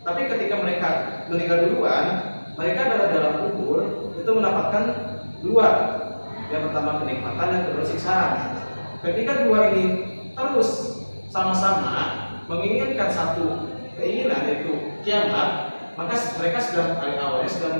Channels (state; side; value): inverted; both; correlation -1.00